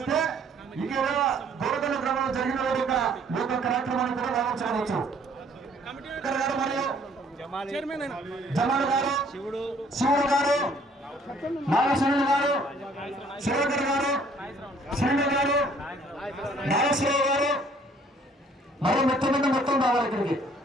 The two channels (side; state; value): both; normal; correlation 0.60